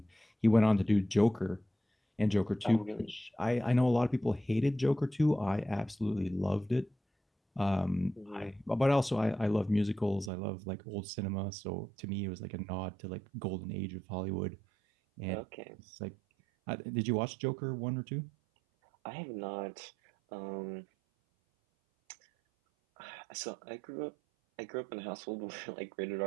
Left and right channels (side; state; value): left; drops out; at 10.3 s